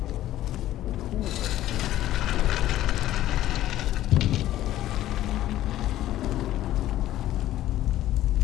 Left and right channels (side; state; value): right; quieter; 13.8 dB